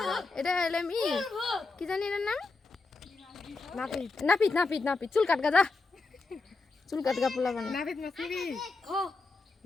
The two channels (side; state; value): right; quieter; 3.8 dB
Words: এটা হলে আমি কি জানি এর নাম নাপিত চুল কাট গা চুল কাট গা পোলা বানা নাপিত মাছ নিবি